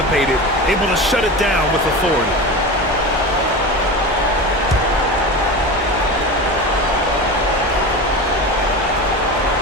able to shut it down with authority.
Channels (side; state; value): both; normal; correlation 0.27